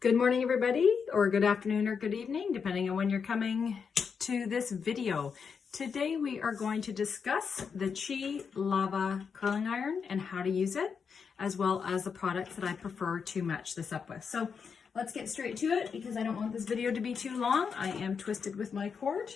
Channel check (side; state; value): right; quieter; 6.1 dB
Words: Good morning, everybody, or good afternoon or good evening, depending on when you're coming to this video. Today, we are going to discuss the Chi Lava curling iron and how to use it, as well as the products that I prefer to match this up with. So let's get straight to it because I don't want this video to be too long. I am twisted with my cord.